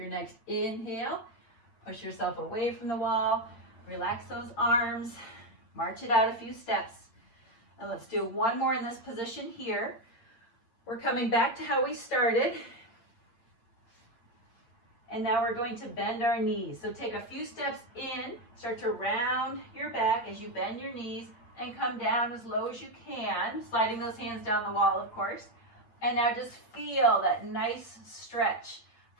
next inhale, push yourself away from the wall, relax those arms, march it out a few steps. And let's do one more in this position here. We're coming back to how we started. And now we're going to bend our knees. So take a few steps in, start to round your back as you bend your knees and come down as low as you can, sliding those hands down the wall, of course. And now just feel that nice stretch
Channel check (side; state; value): right; late; 8.9 ms